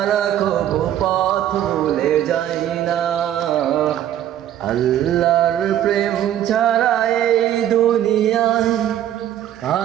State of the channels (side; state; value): left; quieter; 11.4 dB